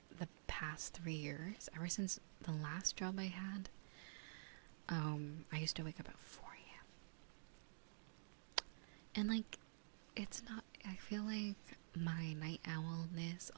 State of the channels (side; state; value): left; silent; digital silence